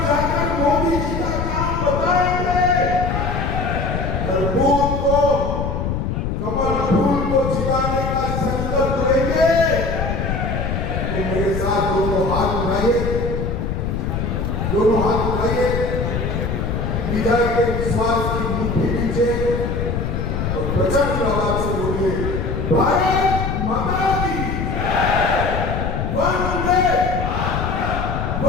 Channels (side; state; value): left; noise; rumble, 2 dB below the sound